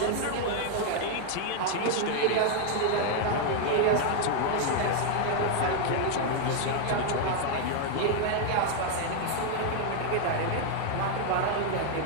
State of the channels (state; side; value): different; both; correlation 0.00